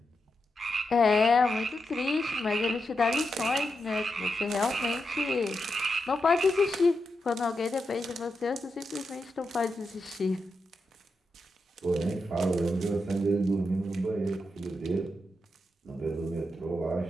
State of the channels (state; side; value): normal; both; correlation 0.86